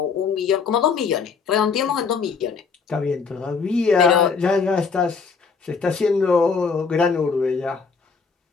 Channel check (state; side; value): quieter; right; 5.3 dB